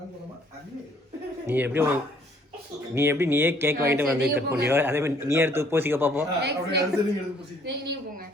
அது நீயே கேக் வாங்கிட்டு வந்து கட் பண்ணியோ அதே மாதிரி நீ எடுத்து பூசிக்க பாப்போம் நீங்க போங்க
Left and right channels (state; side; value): normal; both; correlation 0.62